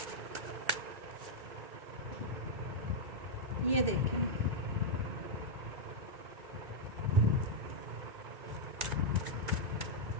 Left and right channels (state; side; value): late; left; 2.2 ms